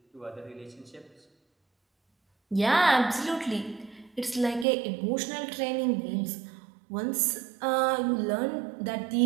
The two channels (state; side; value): drops out; left; at 4.7 s